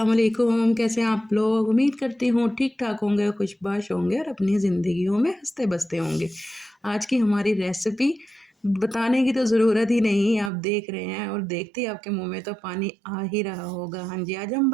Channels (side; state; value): left; drops out; at 10.5 s